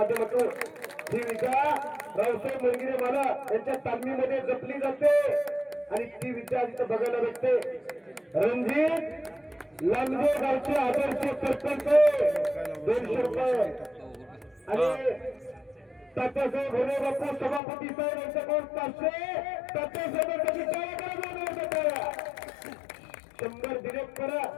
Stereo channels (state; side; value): drops out; right; at 17.6 s